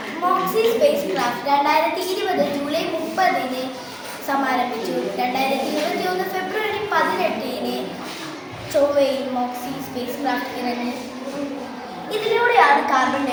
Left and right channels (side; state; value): both; identical; correlation 1.00